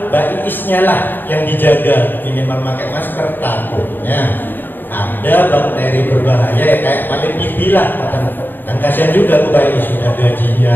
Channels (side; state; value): right; late; 0.092 ms